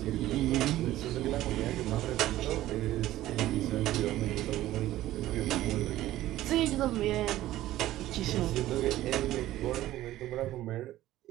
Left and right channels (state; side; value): quieter; left; 14.8 dB